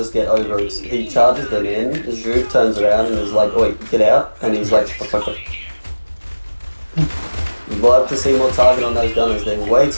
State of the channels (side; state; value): both; inverted; correlation -1.00